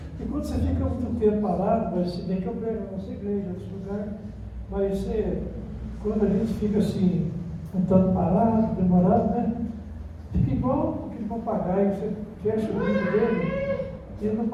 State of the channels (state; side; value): identical; both; correlation 1.00